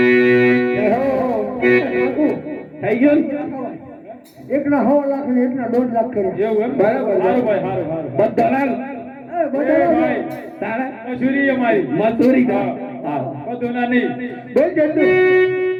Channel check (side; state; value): both; identical; correlation 1.00